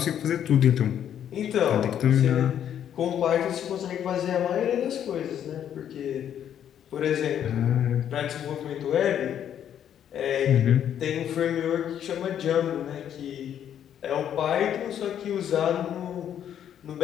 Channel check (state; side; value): quieter; right; 9.7 dB